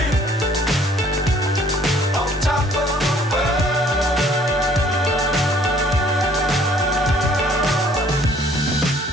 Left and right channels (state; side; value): normal; both; correlation 0.58